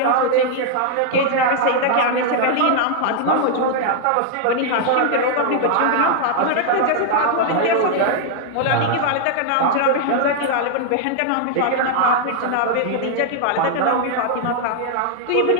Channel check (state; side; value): different; both; correlation 0.00